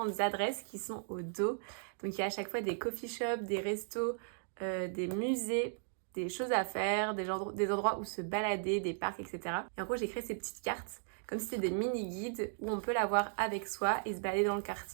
adresses qui sont au dos. Donc il y a à chaque fois des coffee shops, des restos, des musées, des choses à faire, des endroits où se balader, des parcs, etc. Et en gros, j'ai créé ces petites cartes comme si c'était des mini-guides où on peut l'avoir avec soi et se balader dans le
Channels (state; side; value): silent; left; digital silence